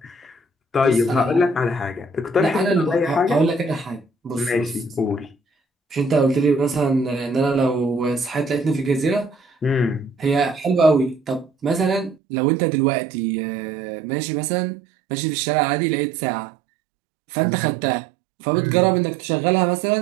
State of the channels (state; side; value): drops out; left; at 12.2 s